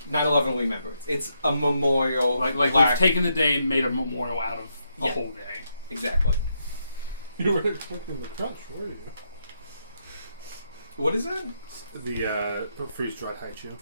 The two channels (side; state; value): both; inverted; correlation -0.79